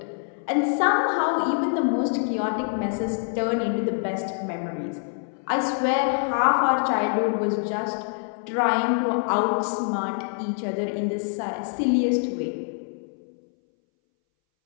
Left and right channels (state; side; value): silent; right; 61 dB below the other